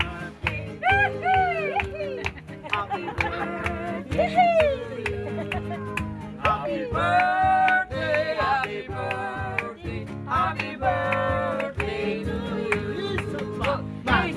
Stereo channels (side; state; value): both; identical; correlation 1.00